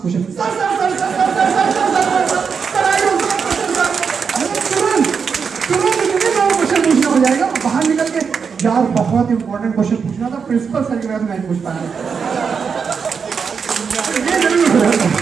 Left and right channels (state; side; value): quieter; left; 6.0 dB